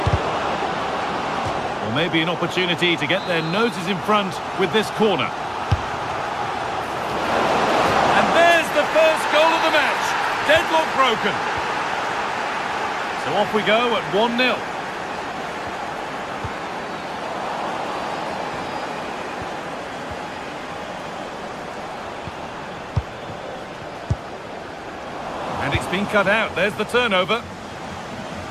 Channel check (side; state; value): both; identical; correlation 1.00